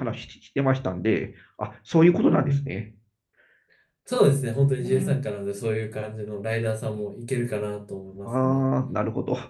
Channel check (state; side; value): identical; both; correlation 1.00